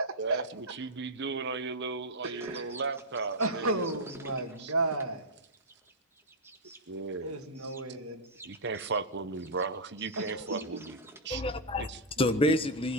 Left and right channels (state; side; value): normal; both; correlation -0.04